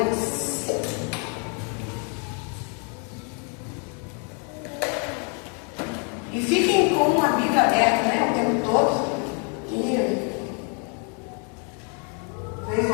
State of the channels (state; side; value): quieter; right; 38.6 dB